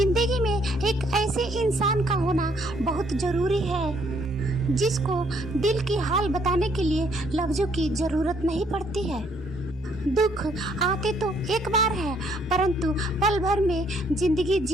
में एक ऐसे इंसान का होना बहुत जरूरी है जिसको दिल की हाल बताने के लिए लफ्जों की जरूरत नहीं पड़ती है। दुख आते तो एक बार है, परंतु पल भर में जिंदगी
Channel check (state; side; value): normal; both; correlation 0.67